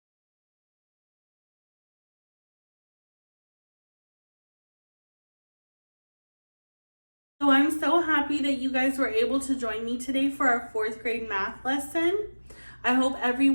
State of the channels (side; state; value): both; inverted; correlation -1.00